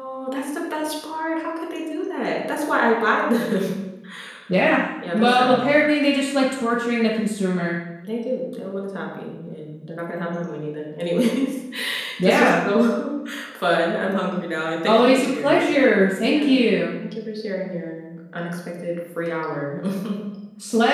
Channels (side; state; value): both; identical; correlation 1.00